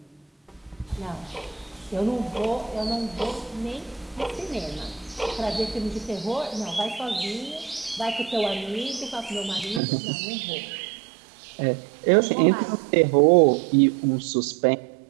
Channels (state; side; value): drops out; left; at 9.8 s